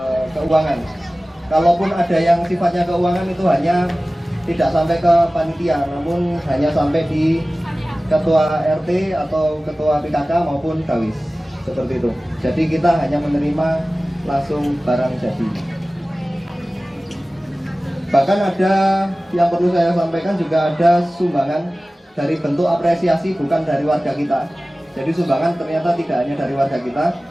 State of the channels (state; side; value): normal; both; correlation 0.97